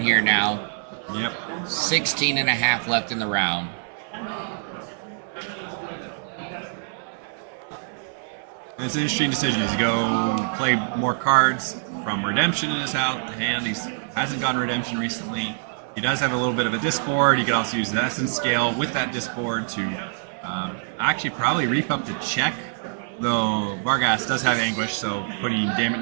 now. Yep. 16 and a half left in the round. It's an interesting decision. He's go play more cards from Redemption in his hand. He hasn't gotten Redemption recently. He does have a little bit of a disboard. You could also use the Essence Scale with that disboard to actually probably reap up the check. Though Vargas does have Anguish, so putting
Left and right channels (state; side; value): silent; left; 57 dB below the other